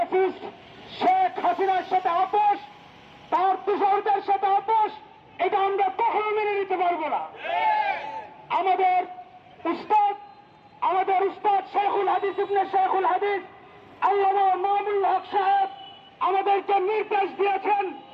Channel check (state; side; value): identical; both; correlation 1.00